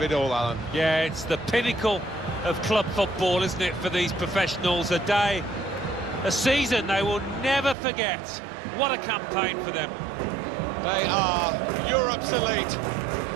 it all, Alan. Yeah, it's the pinnacle of club football, isn't it, for these professionals? A day, a season they will never forget. What a campaign for them. They are Europe's elite.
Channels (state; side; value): drops out; left; at 7.8 s